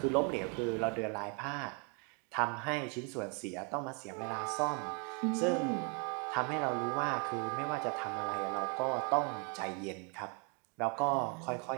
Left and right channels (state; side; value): quieter; left; 35.8 dB